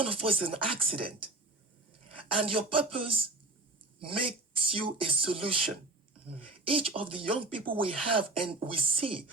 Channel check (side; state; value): left; quieter; 3.0 dB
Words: of us is an accident. And your purpose makes you a solution. Each of the young people we have and we see,